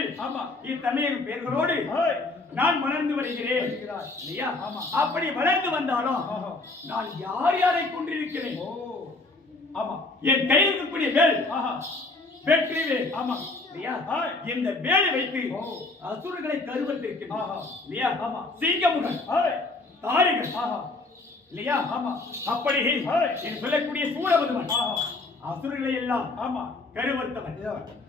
இத்தன்மையின் பெயர்களோடு நான் வளர்ந்து வருகிறேன் இல்லையா? அப்படி வளர்ந்து வந்தாலும் நான் யார் யாரை கொண்டிருக்கிறேன்? ஆமா என் கையில் இருக்கக்கூடிய வேல் வெற்றி வேல். ஆமா இல்லையா? இந்த வேலை வைத்து அசுரர்களை கருவத்திருக்கிறேன் இல்லையா? ஆமா சிங்கமுகன் தாரிகள் இல்லையா? ஆமா அப்படி என்று சொல்லக்கூடிய சூரபதுமன் அசுரர்களை எல்லாம் ஆமா கருவர்த்தவன்.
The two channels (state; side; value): quieter; right; 3.2 dB